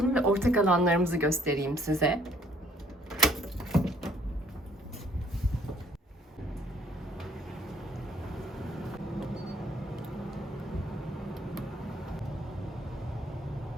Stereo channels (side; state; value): both; normal; correlation 0.63